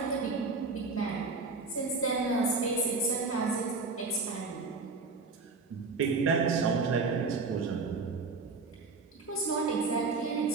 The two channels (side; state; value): left; quieter; 4.1 dB